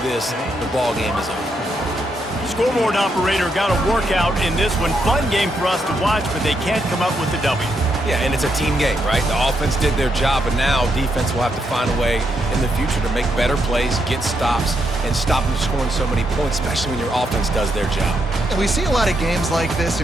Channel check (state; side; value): normal; both; correlation 0.79